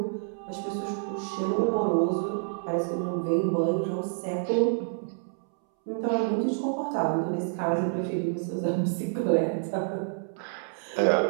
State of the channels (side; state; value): left; silent; 59 dB below the other